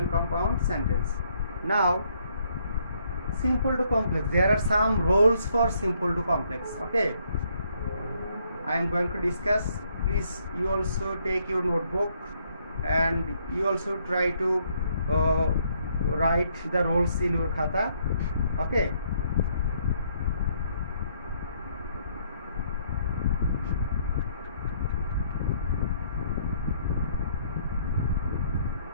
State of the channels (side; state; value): both; inverted; correlation -0.69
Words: compound sentence. Now simple to complex, there are some rules for simple to complex. Okay, I am going to discuss. Please you also take your notebook and you also try to write the rules in your khata. Okay,